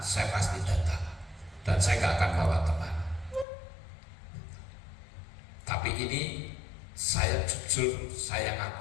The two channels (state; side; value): drops out; right; at 3.5 s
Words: pasti datang. Dan saya gak akan bawa teman. Tapi ini saya jujur, saya